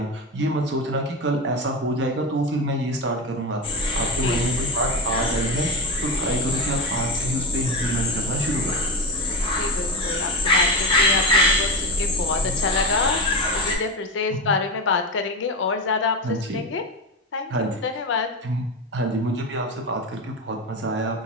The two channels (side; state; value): both; normal; correlation 0.18